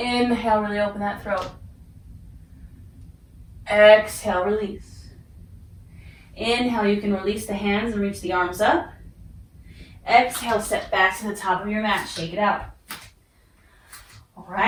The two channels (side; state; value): both; identical; correlation 1.00